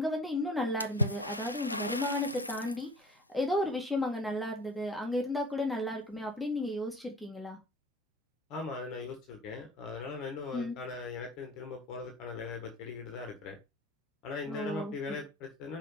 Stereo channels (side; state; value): both; normal; correlation 0.40